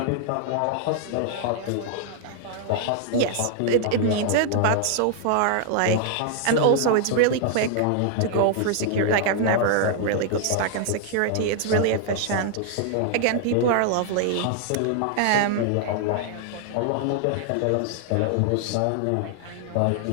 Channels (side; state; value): both; different; correlation 0.00